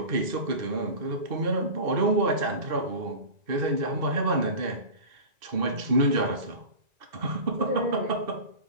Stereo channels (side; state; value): left; late; 1.9 ms